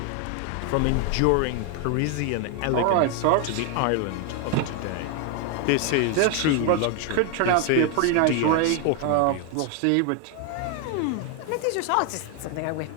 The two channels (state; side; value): different; both; correlation 0.01